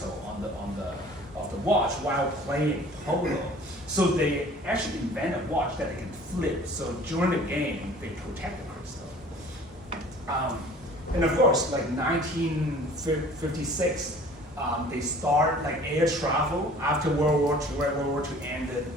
on the watch while playing polo. So they actually invent a watch that they can flip. So during the game, they protect the crystal. And of course, like 1956, they start like air travel after World War II, where World War II ended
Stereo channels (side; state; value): both; normal; correlation 0.48